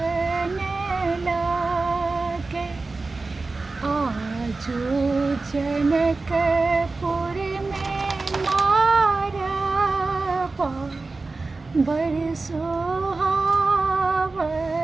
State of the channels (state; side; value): quieter; left; 3.7 dB